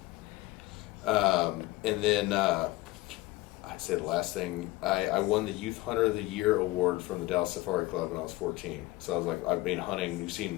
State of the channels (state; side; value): quieter; right; 18.9 dB